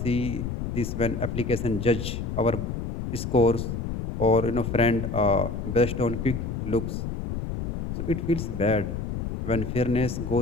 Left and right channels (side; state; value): left; noise; rumble, 4 dB below the sound